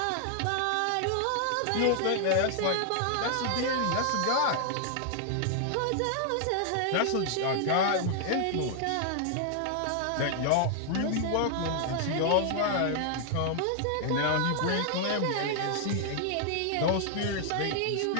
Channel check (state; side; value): different; both; correlation 0.00